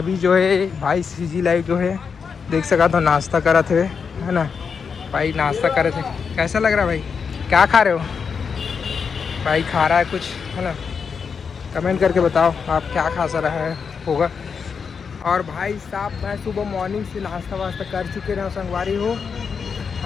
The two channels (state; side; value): quieter; right; 6.0 dB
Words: जो है भाई सीजी लाइव जो है देख सका तो नाश्ता करा थे, है ना भाई, नाश्ता करे थे। कैसा लग रहा है भाई? क्या खा रहे हो भाई? खा रहा है कुछ, है ना? कमेंट करके बताओ आप क्या खा सा रहा है होगा। और भाई साहब मैं सुबह मॉर्निंग से नाश्ता वास्ता कर चुके रहे संगवारी हो,